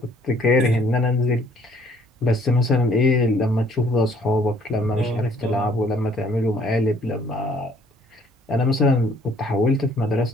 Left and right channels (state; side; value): normal; both; correlation 0.60